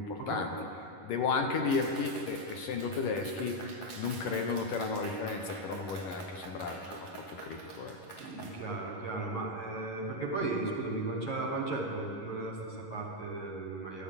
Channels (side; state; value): right; late; 11 ms